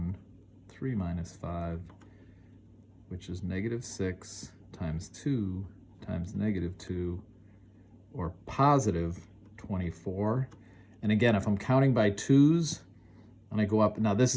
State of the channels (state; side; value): identical; both; correlation 1.00